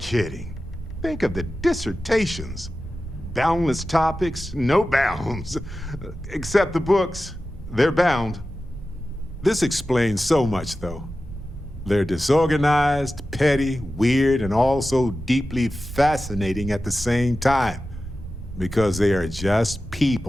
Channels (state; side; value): noise; right; hum, 19 dB below the sound